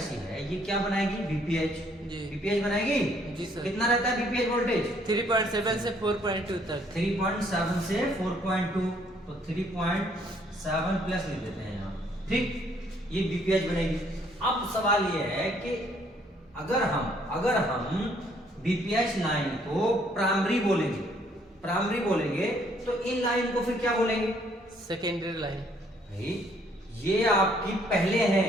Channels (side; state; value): both; normal; correlation 0.65